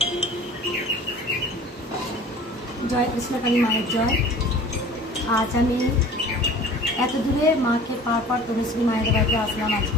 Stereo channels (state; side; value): normal; both; correlation 0.44